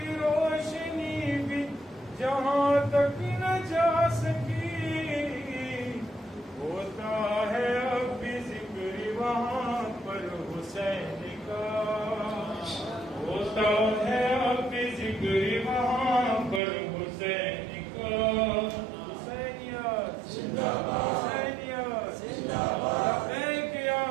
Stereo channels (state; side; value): drops out; left; at 16.6 s